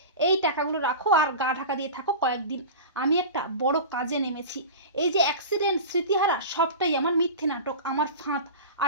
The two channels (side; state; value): both; inverted; correlation -0.31